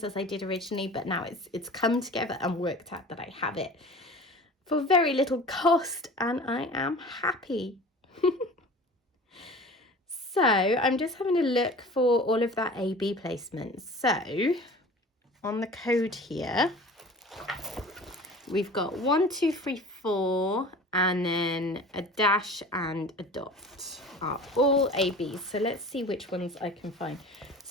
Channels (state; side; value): normal; both; correlation 0.41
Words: as I did originally, but now it's come together and worked out that I have it for very little cost, and I am happy. So I'm just having a look for all of that AB placement. So on the code here, we've got 1, 2, 3, 4, and then a dash and a dot are all ABs. So let's see which ones I can find.